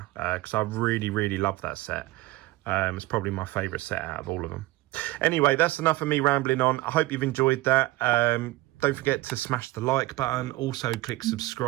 because I really love that set. It's probably my favourite set out of all of them. Anyway, that's enough of me rambling on. I hope you've enjoyed that. Don't forget to smash the like button. Also click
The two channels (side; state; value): left; quieter; 18.8 dB